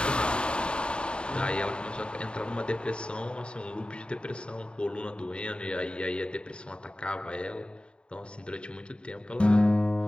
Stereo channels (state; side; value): late; right; 0.053 ms